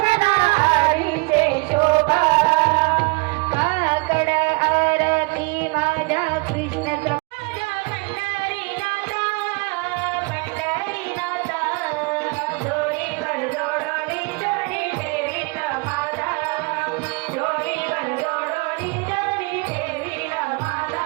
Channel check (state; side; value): quieter; left; 29.4 dB